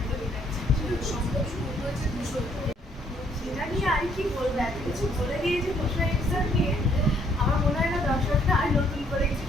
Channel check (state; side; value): normal; both; correlation 0.66